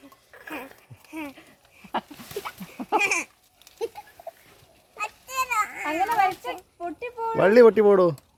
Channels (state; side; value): identical; both; correlation 1.00